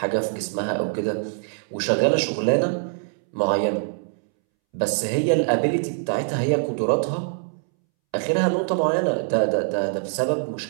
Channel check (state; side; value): silent; left; 63 dB below the other